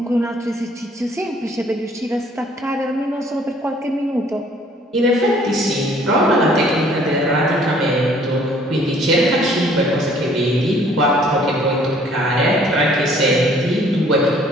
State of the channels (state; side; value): normal; both; correlation 0.58